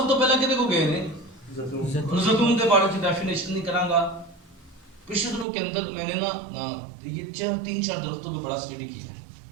تو پہلا کدے کو گئے نے؟ زیتون کے بارے میں ڈیفینیشن نہیں کراں گا. پچھلے دنوں کے اندر میں نے یہ 3-4 درختوں پہ بڑا اسٹڈی کیا ہے.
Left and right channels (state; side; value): drops out; left; at 5.5 s